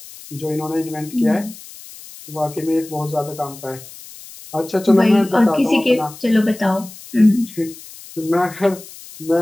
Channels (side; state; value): left; noise; hiss, 17 dB below the sound